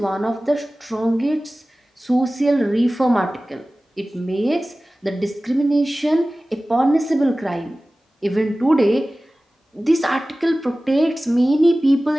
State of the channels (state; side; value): normal; both; correlation 0.97